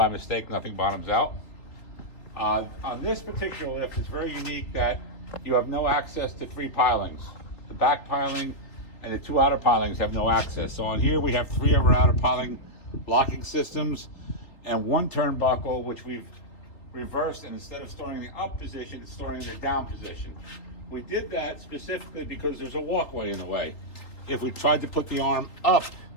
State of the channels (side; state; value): right; late; 3.5 ms